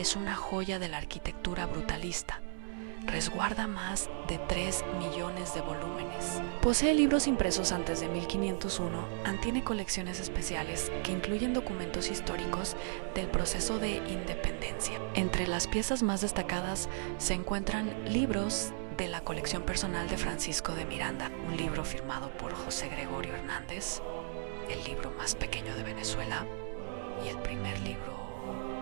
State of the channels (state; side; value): silent; left; 54 dB below the other